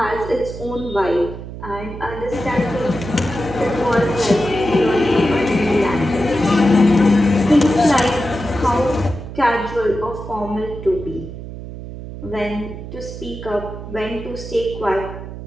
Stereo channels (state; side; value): noise; right; hum, 11 dB below the sound